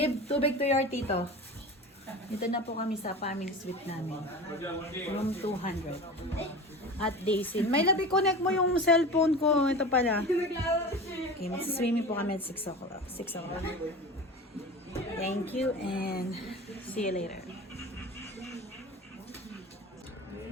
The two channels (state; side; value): normal; both; correlation 0.32